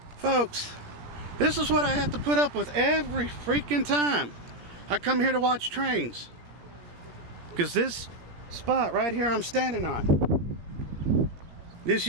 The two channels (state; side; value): late; left; 17 ms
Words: Folks, this is what I have to put up with every freaking time I come here to watch trains. Because this spot right here I'm standing on, this